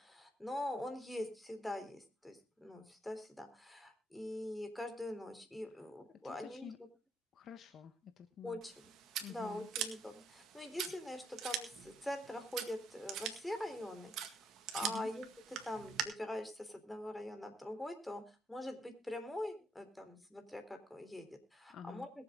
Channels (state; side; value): normal; both; correlation 0.75